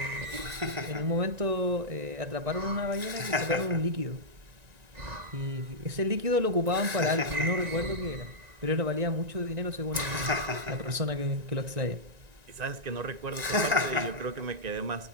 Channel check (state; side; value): late; left; 1.9 ms